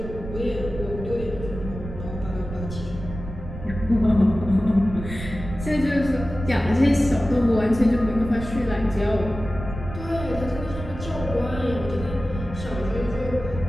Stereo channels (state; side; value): noise; right; rumble, 9 dB below the sound